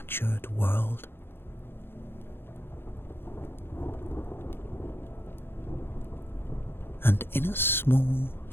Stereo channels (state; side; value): late; right; 0.11 ms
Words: world. And in a small,